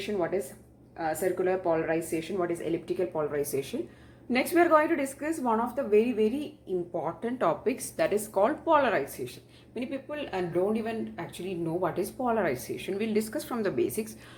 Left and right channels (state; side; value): identical; both; correlation 1.00